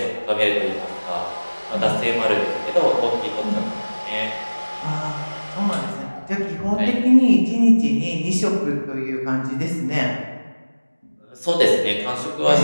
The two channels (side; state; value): both; inverted; correlation -1.00